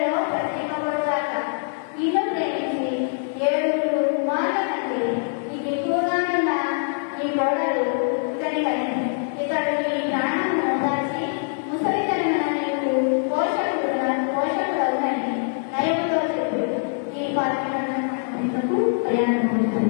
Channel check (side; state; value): right; silent; 63 dB below the other